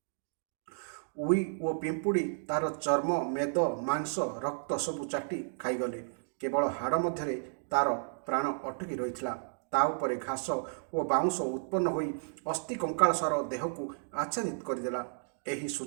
उई और पिंपुड़ी तार चर्म मेद मांस रक्त सबु चाटी खाईगले। केवल हाड़ मध्य तार प्राण अटकी रही। ता उपरे घास और बाउंस उत्पन्न होई अस्थि कंकाल सार देह को आच्छादित करदेला। एही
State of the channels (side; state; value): left; silent; digital silence